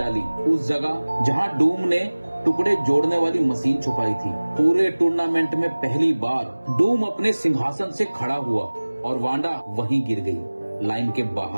उस जगह जहां डूम ने टुकड़े जोड़ने वाली मशीन छुपाई थी। पूरे टूर्नामेंट में पहली बार डूम अपने सिंहासन से खड़ा हुआ और वांडा वहीं गिर गई, लाइन के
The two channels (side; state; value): both; inverted; correlation -1.00